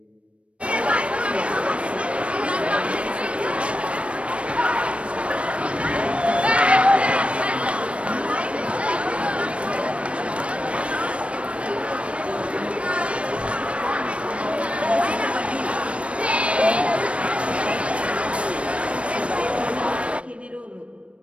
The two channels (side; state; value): left; late; 0.061 ms